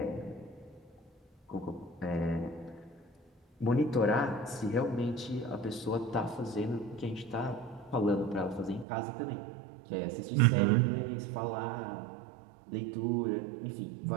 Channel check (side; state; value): left; drops out; at 8.8 s